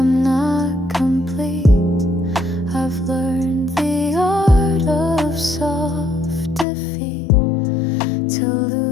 not complete. I've learned the art of soft defeat, to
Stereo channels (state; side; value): drops out; right; at 6.7 s